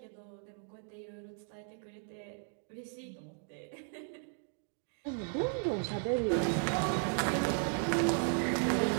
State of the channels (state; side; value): silent; left; 54 dB below the other